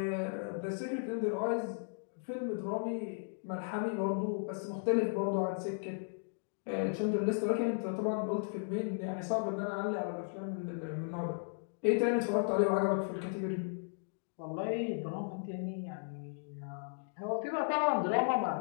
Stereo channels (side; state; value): right; silent; digital silence